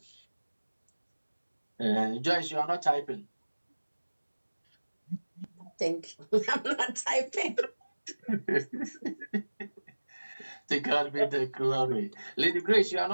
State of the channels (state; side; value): inverted; both; correlation -1.00